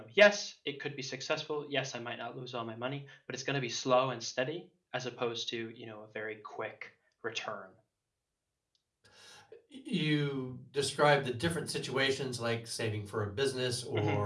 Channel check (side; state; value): both; identical; correlation 1.00